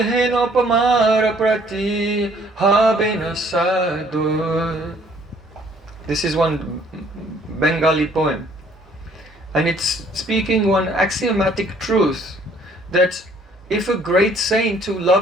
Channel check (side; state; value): both; normal; correlation 0.61